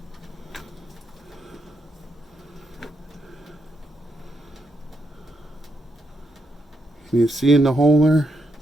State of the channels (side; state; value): both; normal; correlation 0.81